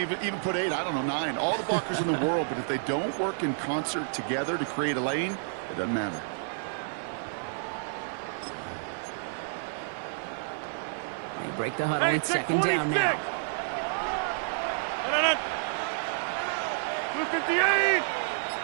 put 8, I don't know, 9. All the blockers in the world, but if they don't work in concert together to create a lane, it doesn't matter. They break the huddle. It's 2nd down now. 258.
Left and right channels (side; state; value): left; silent; digital silence